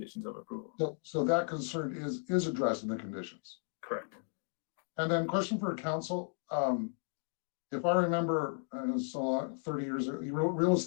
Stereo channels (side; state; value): right; silent; 54 dB below the other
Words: of approval. So that concern is addressed in the conditions. Correct. And then question for council. If I remember, so 30 years ago, you wrote real